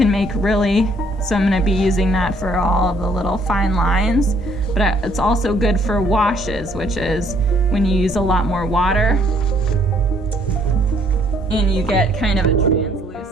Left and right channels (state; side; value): normal; both; correlation 0.64